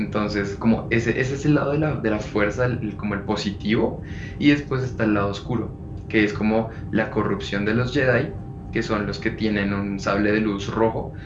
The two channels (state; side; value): identical; both; correlation 1.00